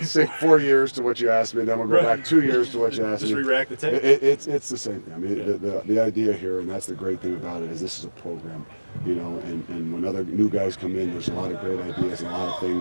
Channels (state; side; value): inverted; both; correlation -1.00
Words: years to what you asked me, then we'll go back 2 years to what you asked me. Just re-rack the tape. It's the same thing. I mean, the idea here, and that's the great thing about it, is this is a program. And when other new guys come in, there's a lot of great ideas and a lot of